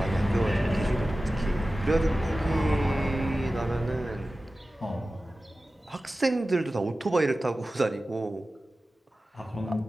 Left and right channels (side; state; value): both; normal; correlation 0.95